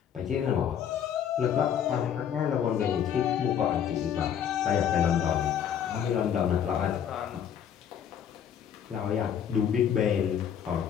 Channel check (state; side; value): quieter; right; 8.8 dB